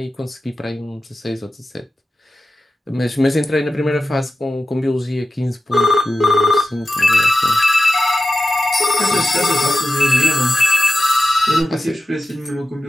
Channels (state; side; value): normal; both; correlation 0.94